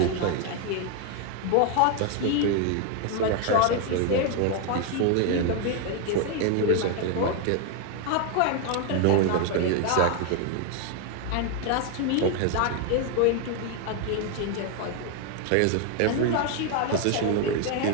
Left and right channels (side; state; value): both; different; correlation 0.01